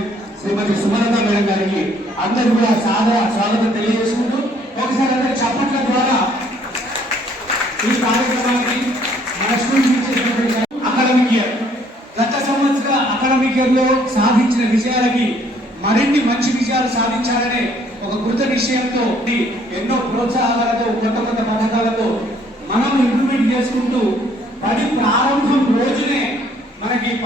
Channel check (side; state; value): both; normal; correlation 0.63